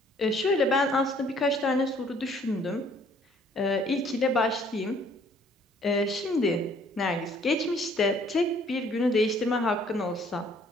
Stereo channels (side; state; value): both; normal; correlation 0.60